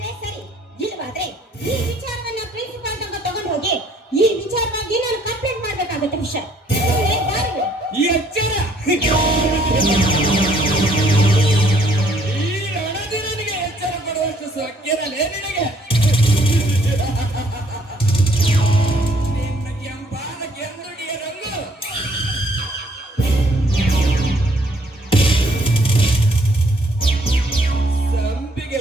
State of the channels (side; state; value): both; normal; correlation 0.64